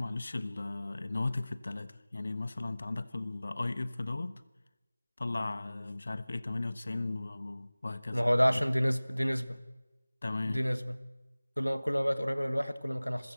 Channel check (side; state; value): both; inverted; correlation -0.99